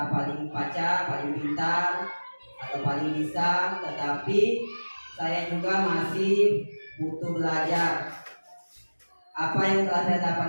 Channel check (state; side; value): inverted; both; correlation -1.00